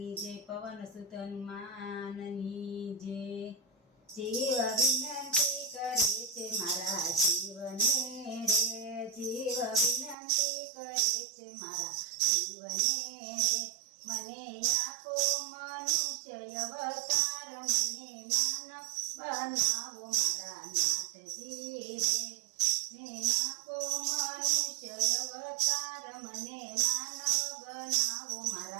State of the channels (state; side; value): drops out; left; at 10.2 s